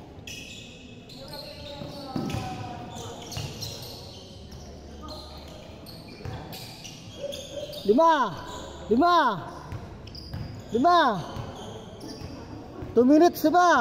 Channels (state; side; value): identical; both; correlation 1.00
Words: Lima. Lima. Lima. 2 minutes na ba?